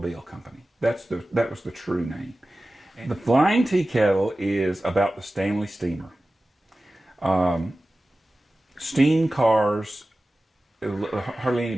Company. That was the true name. And the Flying Tea Kettle is about the Stanley steamer. Steam cars, hardly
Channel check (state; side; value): normal; both; correlation 0.96